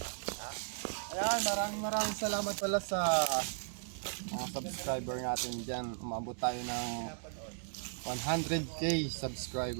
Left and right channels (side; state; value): left; silent; 54 dB below the other